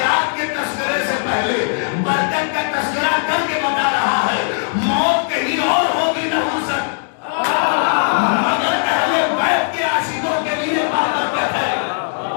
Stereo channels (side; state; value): right; silent; 67 dB below the other